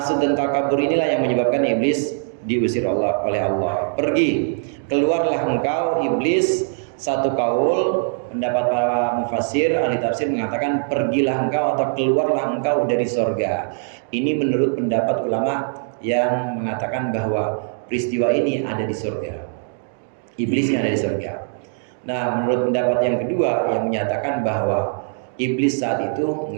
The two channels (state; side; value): silent; left; digital silence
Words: dan takabur inilah yang menyebabkan iblis diusir oleh Allah. Pergi, keluarlah engkau iblis. Satu kaul pendapat para mufassir ahli tafsir mengatakan pergilah engkau atau keluarlah engkau dari sorga. Ini menurut pendapat ulama yang mengatakan bahwa peristiwa ini ada di surga. Iblisnya ada di surga. Nah, menurut pendapat yang kedua yang menyatakan bahwa iblis saat itu